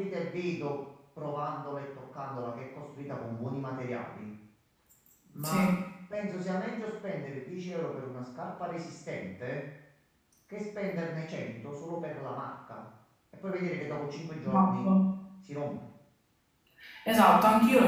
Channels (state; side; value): identical; both; correlation 1.00